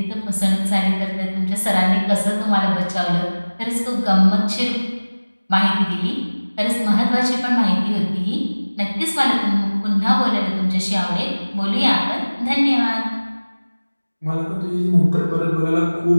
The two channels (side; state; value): both; inverted; correlation -1.00